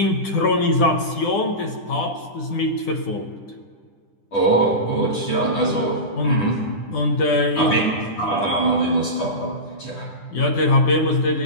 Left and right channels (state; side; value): late; right; 10 ms